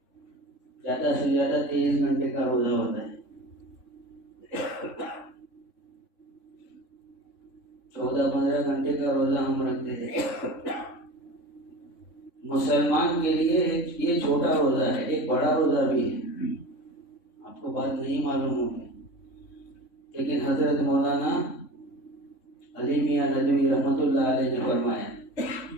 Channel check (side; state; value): right; late; 3.6 ms